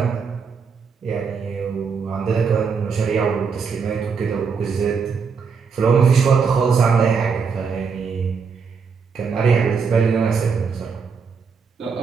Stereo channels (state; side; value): quieter; left; 5.7 dB